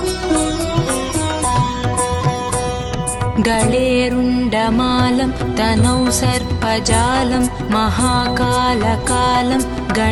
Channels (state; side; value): identical; both; correlation 1.00